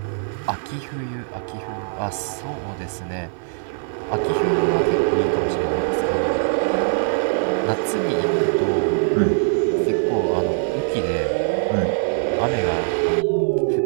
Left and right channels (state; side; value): silent; left; 57 dB below the other